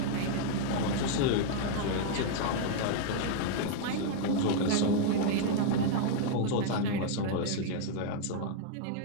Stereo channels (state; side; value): different; both; correlation -0.01